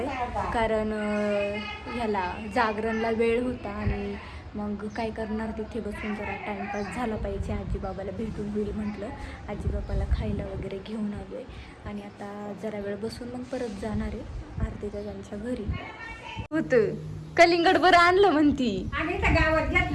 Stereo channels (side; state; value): both; identical; correlation 1.00